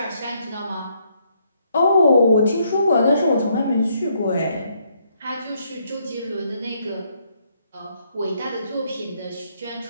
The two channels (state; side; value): inverted; both; correlation -0.71